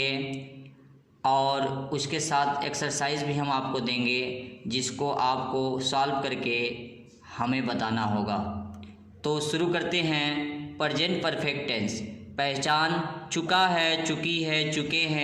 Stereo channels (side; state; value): both; identical; correlation 1.00